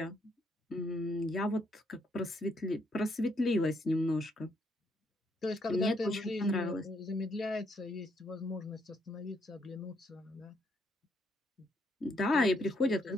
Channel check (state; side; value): normal; both; correlation 0.74